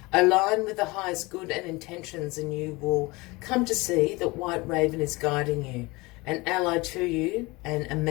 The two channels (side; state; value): right; quieter; 23.5 dB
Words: Align with the highest good and intentions, and you will come to see that White Raven is guiding you, an ally to you, and a